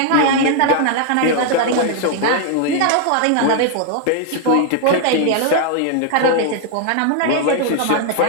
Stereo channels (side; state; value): both; different; correlation 0.00